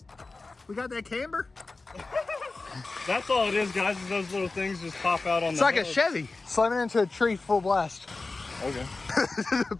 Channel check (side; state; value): right; quieter; 3.6 dB